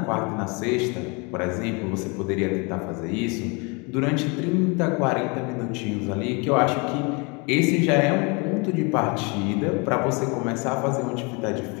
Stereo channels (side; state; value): right; quieter; 30.5 dB